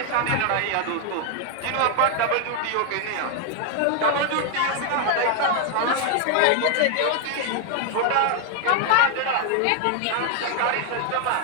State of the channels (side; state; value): both; different; correlation 0.00